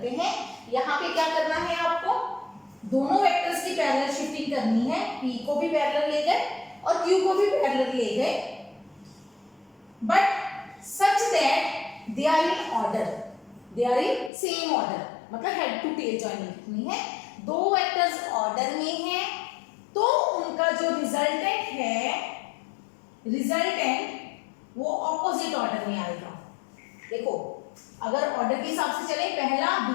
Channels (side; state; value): right; drops out; at 14.3 s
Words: हैं। यहाँ पे क्या करना है आपको? दोनों वेक्टर्स की पैरेलल शिफ्टिंग करनी है। P को भी पैरेलल ले गए और Q को भी पैरेलल ले गए, but such that they are in order, they are in same order, मतलब हेड टू टेल ज्वाइनिंग करनी है। दो वेक्टर्स ऑर्डर में हैं तो उनका जो रिजल्टेंट है, रिजल्टेंट वो ऑपोजिट ऑर्डर में आएगा। देखो, अगर ऑर्डर के हिसाब से चले, पहला